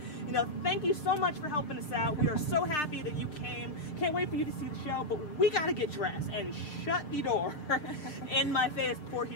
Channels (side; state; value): right; late; 6.6 ms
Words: thank you so much for helping us out. We are so happy that you came. Can't wait for you to see the show, but we got to get dressed, and shut the door in my face before